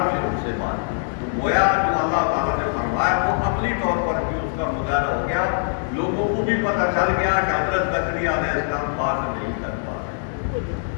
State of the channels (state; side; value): silent; right; 56 dB below the other